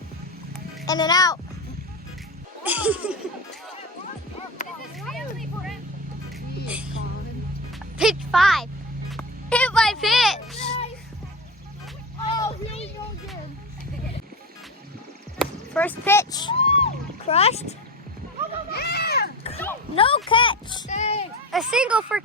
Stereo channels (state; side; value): normal; both; correlation 0.24